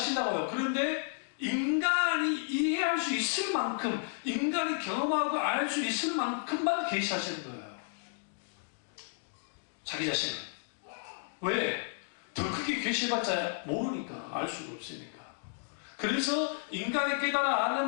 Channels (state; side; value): silent; right; digital silence